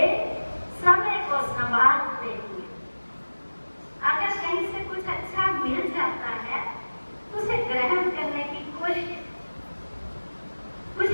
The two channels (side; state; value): both; inverted; correlation -1.00